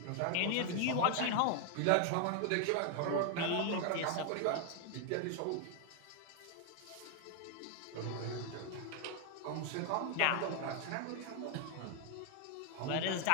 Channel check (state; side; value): different; both; correlation 0.01